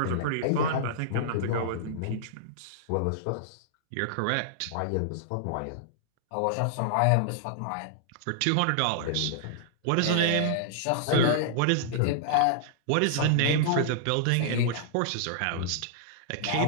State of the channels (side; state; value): both; different; correlation -0.01